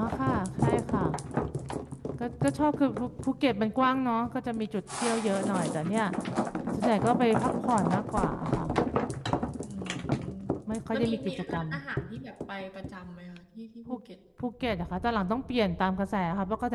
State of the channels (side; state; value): both; identical; correlation 1.00